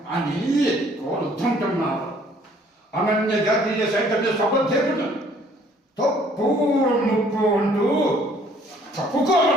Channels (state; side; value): normal; both; correlation 0.60